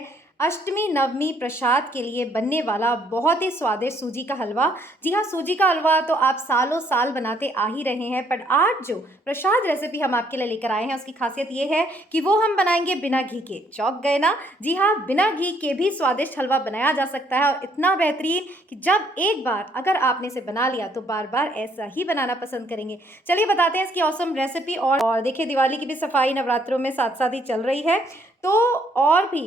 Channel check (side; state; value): both; normal; correlation 0.67